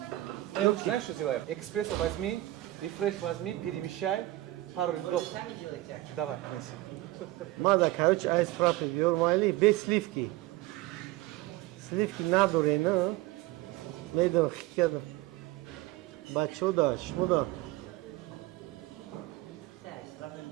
знаешь что сделаем экспресса возьми и фреш возьми перемещай пару льдов давай неси мада короче айс фраппе биор майли без сливки надо не медо хикеда бачода шмода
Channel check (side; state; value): left; quieter; 17.5 dB